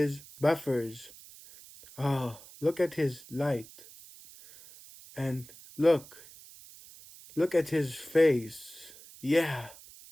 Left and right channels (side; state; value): right; noise; hiss, 20 dB below the sound